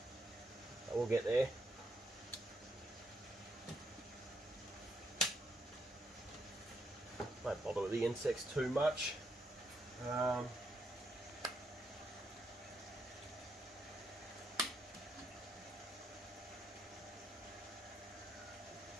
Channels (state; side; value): normal; both; correlation 0.77